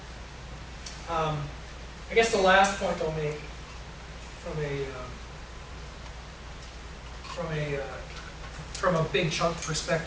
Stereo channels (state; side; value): identical; both; correlation 1.00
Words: about. I guess the last point I'll make from a big chunk